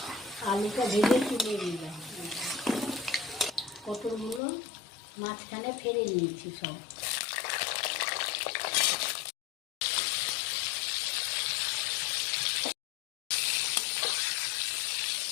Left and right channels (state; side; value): drops out; right; at 4.4 s